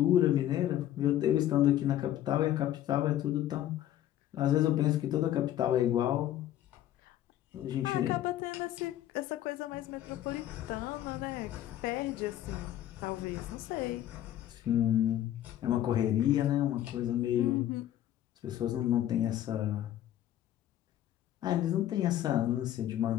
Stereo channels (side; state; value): right; quieter; 12.4 dB